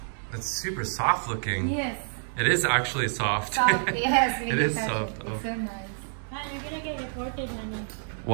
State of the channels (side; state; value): left; silent; digital silence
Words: It's super soft looking. Yes. It is actually soft. Soft. Yes. It is soft. It's so nice. Man, you're gonna get reported, honey.